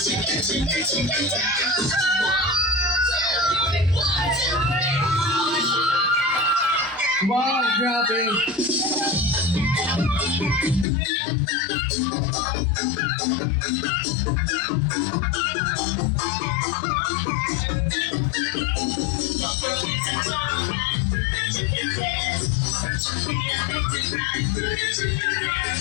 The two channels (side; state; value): right; drops out; at 10.9 s